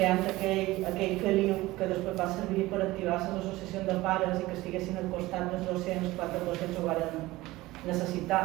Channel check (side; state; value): left; quieter; 18.7 dB